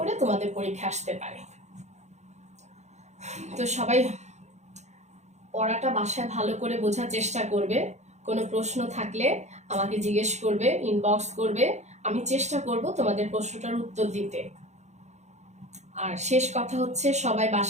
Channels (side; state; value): left; late; 0.33 ms